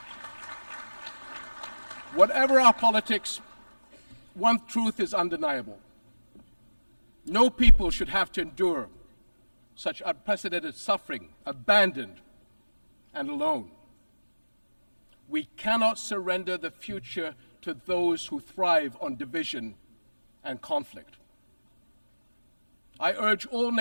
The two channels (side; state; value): both; inverted; correlation -1.00